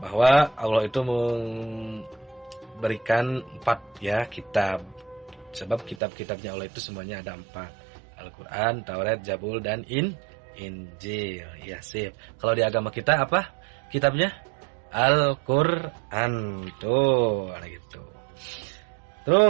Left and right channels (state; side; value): drops out; left; at 6.0 s